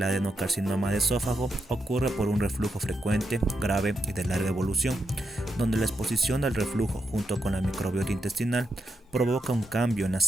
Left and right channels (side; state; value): both; normal; correlation 0.83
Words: adenocarcinoma de esófago ocurre por un reflujo frecuente, grave y de larga evolución, donde la exposición al reflujo junto con la microbiota intestinal provoca un cambio en las